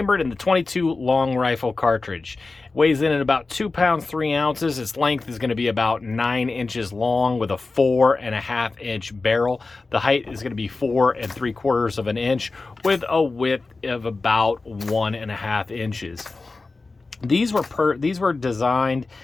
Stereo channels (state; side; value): quieter; right; 3.7 dB